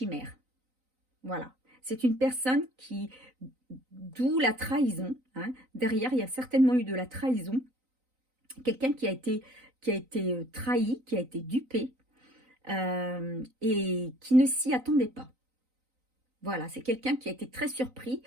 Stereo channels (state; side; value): late; left; 3.9 ms